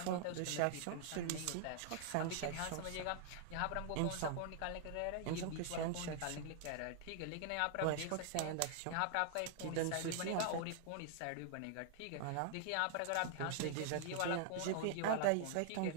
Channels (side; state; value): both; different; correlation -0.01